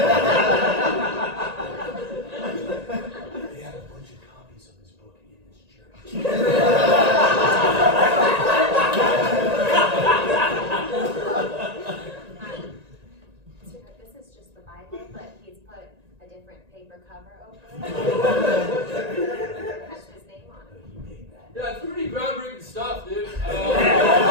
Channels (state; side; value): late; left; 1.9 ms